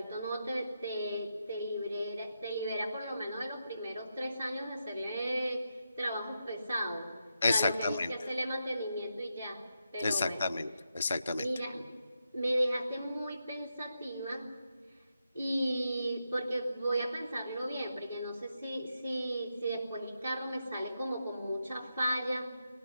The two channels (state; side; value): inverted; both; correlation -0.85